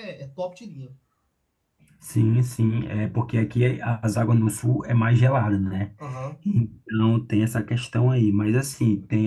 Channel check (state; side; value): identical; both; correlation 1.00